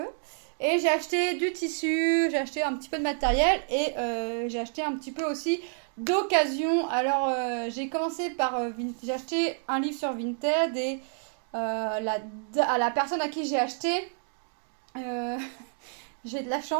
Et j'ai acheté du tissu, j'ai acheté un petit peu de matériel et j'ai acheté un petit peu aussi d'occasion. Alors j'ai commencé par j'ai acheté un livre sur Vinted et à la personne à qui j'ai acheté, euh, j'ai de la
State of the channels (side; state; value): left; silent; digital silence